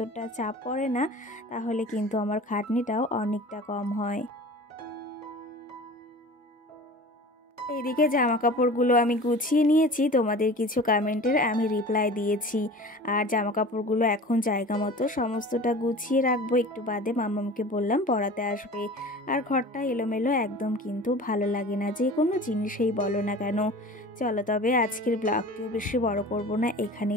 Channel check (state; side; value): normal; both; correlation 0.39